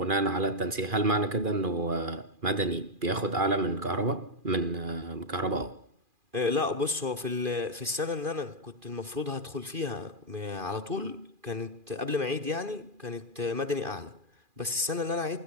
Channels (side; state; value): left; late; 2.4 ms